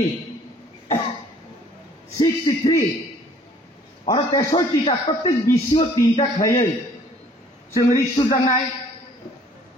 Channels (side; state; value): both; normal; correlation 0.57